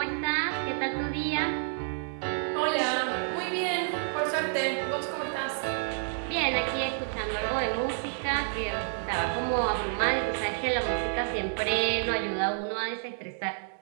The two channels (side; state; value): left; silent; digital silence